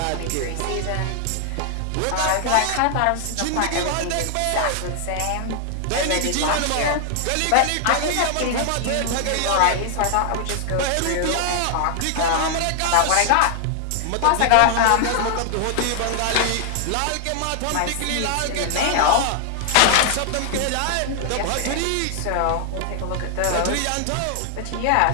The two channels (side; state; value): both; different; correlation 0.00